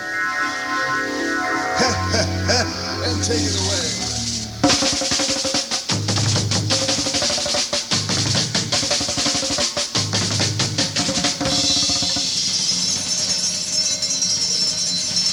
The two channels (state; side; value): identical; both; correlation 1.00